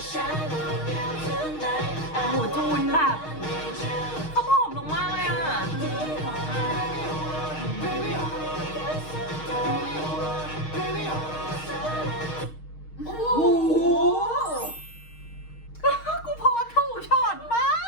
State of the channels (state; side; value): late; right; 6.4 ms